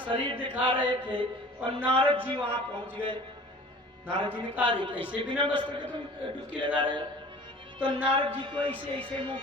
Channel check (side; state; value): both; normal; correlation 0.44